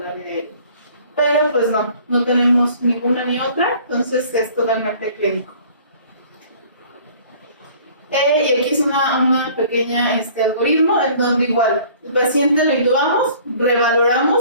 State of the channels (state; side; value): inverted; both; correlation -0.52